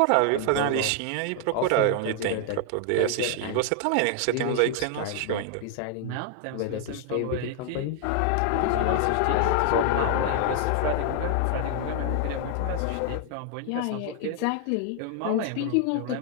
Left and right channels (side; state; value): both; different; correlation 0.00